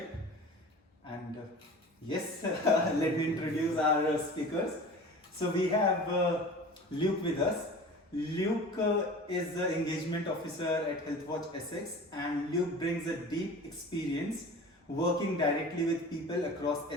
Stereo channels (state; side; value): normal; both; correlation 0.38